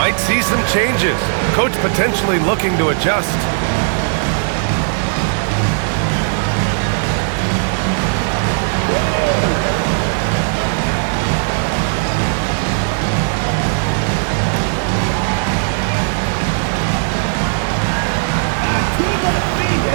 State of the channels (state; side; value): silent; left; 68 dB below the other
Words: see some changes. Coach potentially looking to adjust.